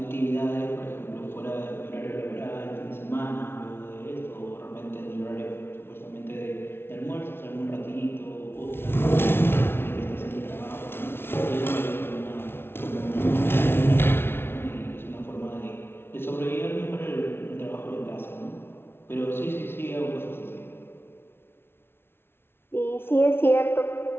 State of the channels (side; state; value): right; late; 0.11 ms